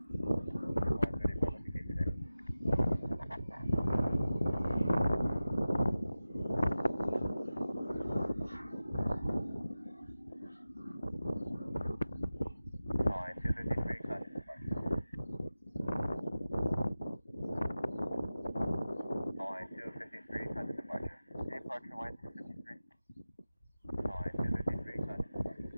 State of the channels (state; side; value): inverted; both; correlation -0.95